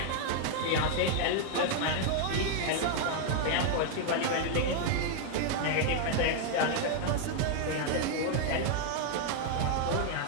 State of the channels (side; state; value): both; different; correlation 0.00